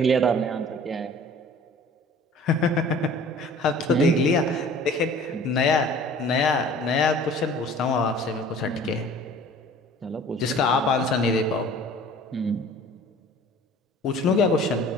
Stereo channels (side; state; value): both; normal; correlation 0.47